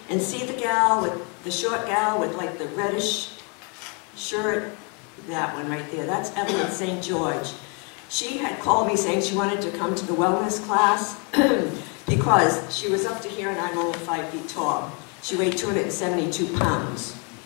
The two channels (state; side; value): quieter; right; 35.0 dB